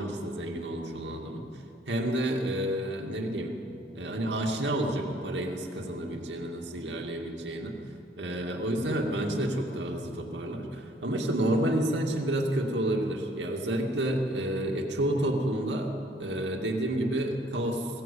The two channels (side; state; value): both; normal; correlation 0.60